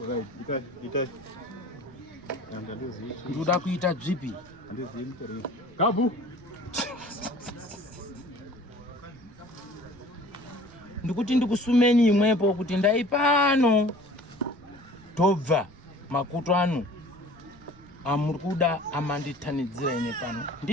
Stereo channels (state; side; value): noise; right; rumble, 24 dB below the sound